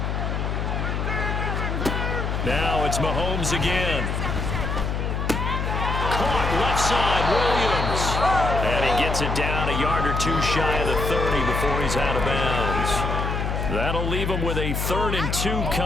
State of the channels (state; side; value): noise; left; hum, 1 dB below the sound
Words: Now it's Mahomes again. Caught left side, Williams. And he gets it down a yard or 2 shy of the 30 before he's out of bounds. That'll leave them with a 3rd and 2